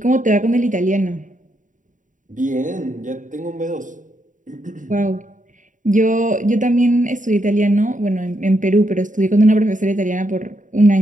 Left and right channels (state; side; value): late; left; 0.37 ms